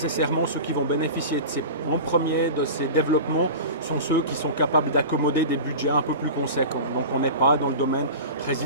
ceux qui vont bénéficier en premier de ces développements sont ceux qui sont capables d'accommoder des budgets un peu plus conséquents. Donc on n'est pas dans le domaine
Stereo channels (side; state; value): both; inverted; correlation -0.32